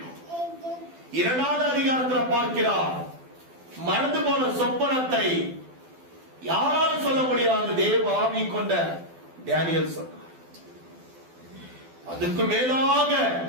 2வது அதிகாரத்தில் பார்க்கிறார், மறந்து போன சொப்பனத்தை யாராலும் சொல்ல முடியாது, தேவ ஆவி கொண்ட தானியேல் சொன்னார். அதுக்கு மேலாக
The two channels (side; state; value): left; late; 12 ms